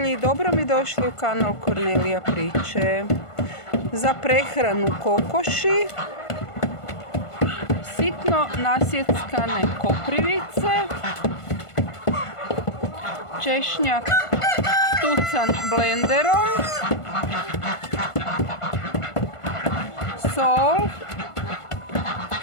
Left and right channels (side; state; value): right; late; 1.5 ms